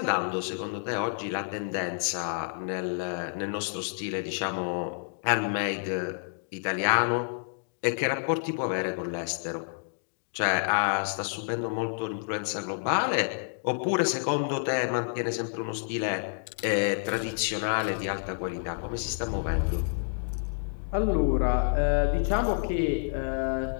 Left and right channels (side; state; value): right; silent; digital silence